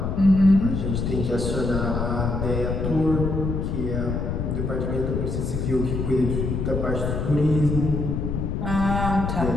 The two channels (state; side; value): noise; left; rumble, 1 dB below the sound